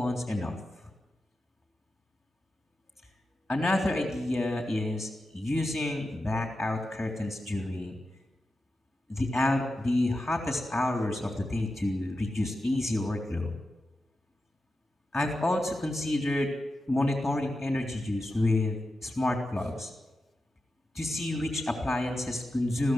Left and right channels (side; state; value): both; normal; correlation 0.90